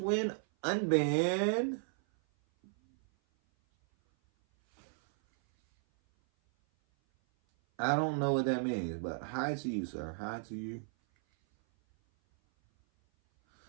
unbanned. I don't know what that means, but hi to you, sir. Hi to you.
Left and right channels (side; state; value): left; silent; 55 dB below the other